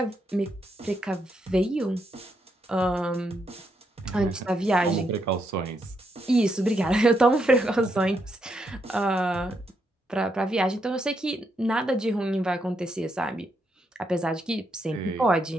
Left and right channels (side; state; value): both; normal; correlation 0.79